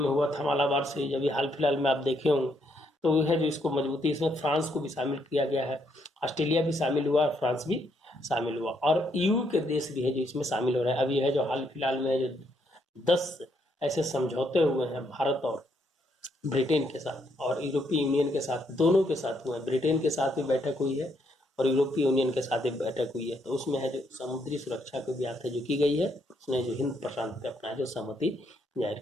हुआ था मालाबार सीरीज। अभी हाल फिलहाल में आप देखे होंगे तो वो है जो इसको मजबूती, इसमें फ्रांस को भी शामिल किया गया है, ऑस्ट्रेलिया भी शामिल हुआ, फ्रांस भी शामिल हुआ और ईयू के देश भी है जो इसमें शामिल हो रहे हैं। अभी है जो हाल फिलहाल में जो 10 ऐसे समझौते हुए हैं भारत और ब्रिटेन के साथ और यूरोपीय यूनियन के साथ, दोनों के साथ हुए हैं। ब्रिटेन के साथ भी बैठक हुई है और यूरोपीय यूनियन के साथ भी बैठक हुई है। तो उसमें है जो समुद्री सुरक्षा की बात है जो की गई है, उसने जो हिंद प्रशांत पे अपना जो सहमति जाहिर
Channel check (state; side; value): normal; both; correlation 0.74